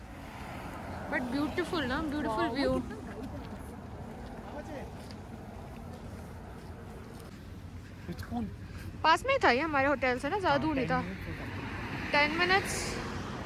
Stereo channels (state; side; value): identical; both; correlation 1.00